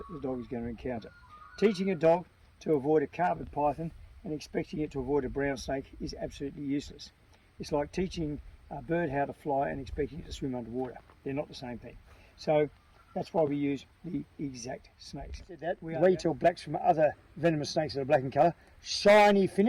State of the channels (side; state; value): both; identical; correlation 1.00